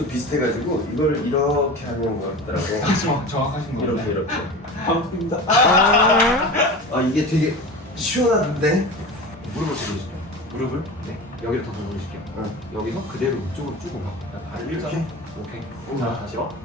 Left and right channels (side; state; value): both; normal; correlation 0.31